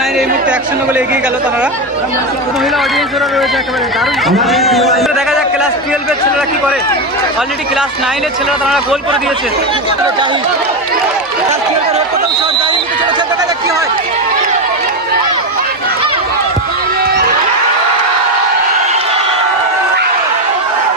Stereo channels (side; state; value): both; normal; correlation 0.12